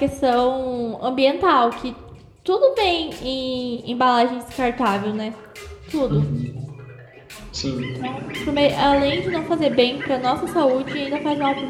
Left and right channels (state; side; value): identical; both; correlation 1.00